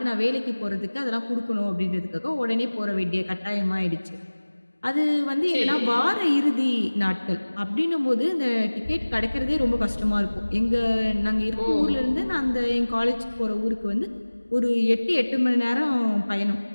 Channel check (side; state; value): both; inverted; correlation -1.00